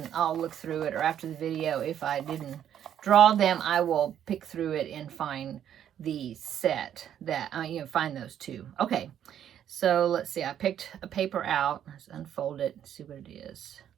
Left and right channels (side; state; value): left; quieter; 10.0 dB